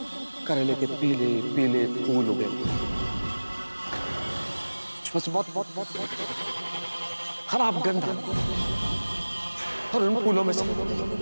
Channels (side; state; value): both; inverted; correlation -1.00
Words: करेले के पीले पीले फूल उगे, बहुत खराब गंध, और उन फूलों में से